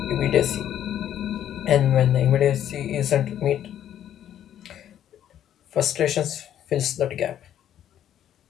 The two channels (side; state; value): right; quieter; 10.7 dB